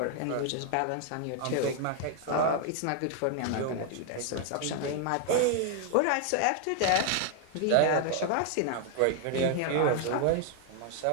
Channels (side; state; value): both; different; correlation 0.00